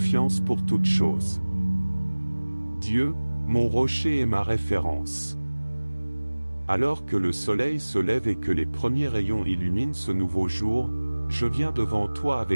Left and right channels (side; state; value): both; inverted; correlation -1.00